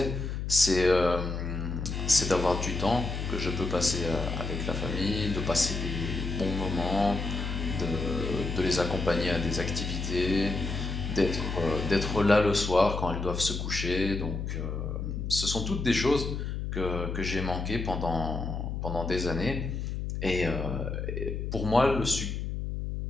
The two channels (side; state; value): left; noise; hum, 3 dB below the sound